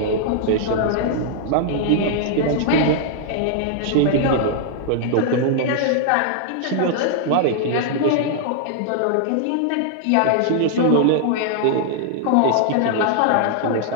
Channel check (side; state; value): both; different; correlation -0.01